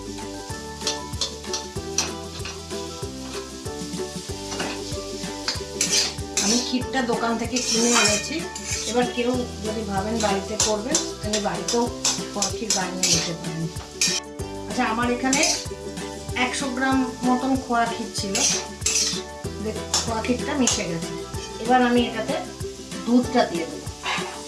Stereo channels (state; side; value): identical; both; correlation 1.00